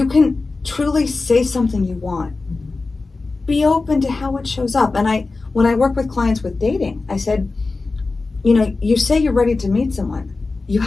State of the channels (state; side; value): quieter; right; 3.7 dB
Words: can truly say something you want. Be open to how it shows up. And when I work with clients with dating, I said, you say you're ready to meet someone. You